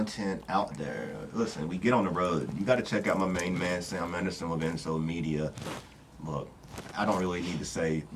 out there, listen, we get on the road. You got to check out my main man, Sam Anderson with Enso Media. Look, I don't really need to say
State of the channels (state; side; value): identical; both; correlation 1.00